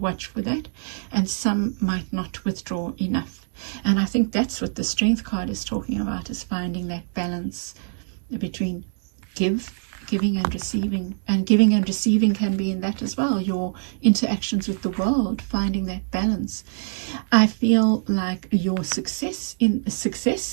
for that, and some might not withdraw enough. And I think that's what the strength card is talking about, is finding that balance between giving and receiving. And giving and receiving can be in that as well, your interactions with the world, finding that balance. I feel like your success,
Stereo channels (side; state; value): left; silent; digital silence